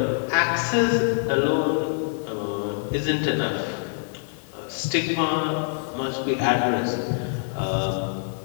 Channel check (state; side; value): silent; right; digital silence